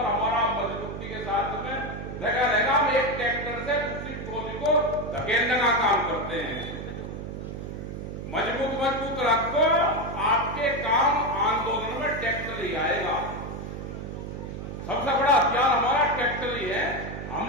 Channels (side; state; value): right; noise; hum, 8 dB below the sound